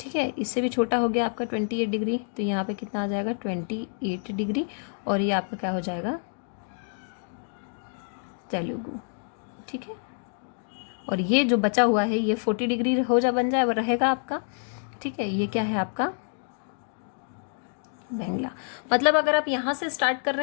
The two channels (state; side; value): silent; right; 60 dB below the other